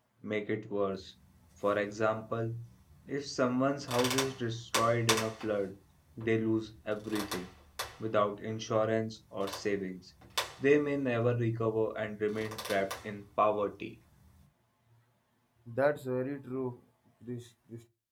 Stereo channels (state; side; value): identical; both; correlation 1.00